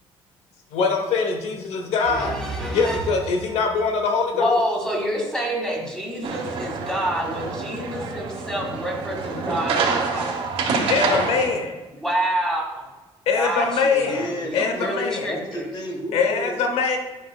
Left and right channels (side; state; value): both; normal; correlation 0.42